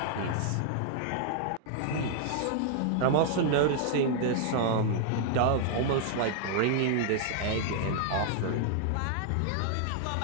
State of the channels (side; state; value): both; different; correlation -0.01